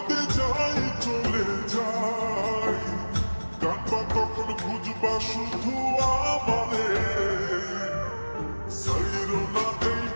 যাই চলে যাই কাঁদবা তখন বুঝবা শুধু আমারে। সাইরো না এই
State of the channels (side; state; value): both; inverted; correlation -1.00